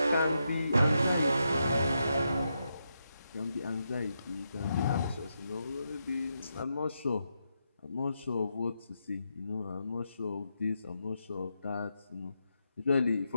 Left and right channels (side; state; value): both; inverted; correlation -0.84